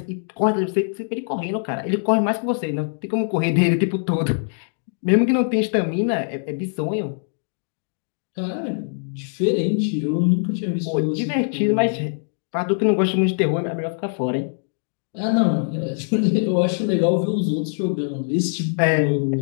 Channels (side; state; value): right; silent; 64 dB below the other